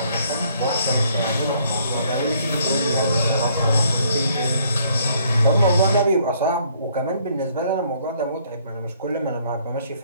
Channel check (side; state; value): both; inverted; correlation -0.65